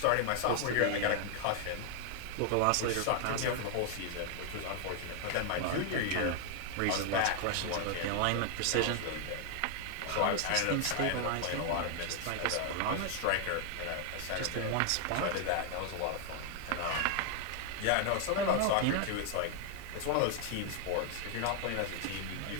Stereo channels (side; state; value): both; different; correlation 0.00